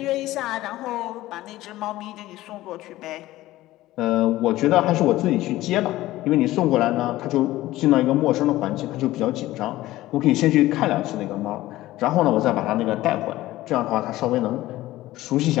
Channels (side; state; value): right; quieter; 16.4 dB